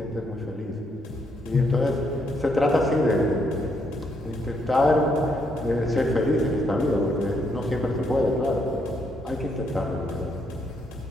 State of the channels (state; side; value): normal; both; correlation 0.75